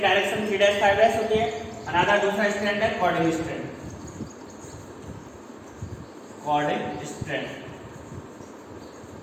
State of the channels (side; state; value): both; identical; correlation 1.00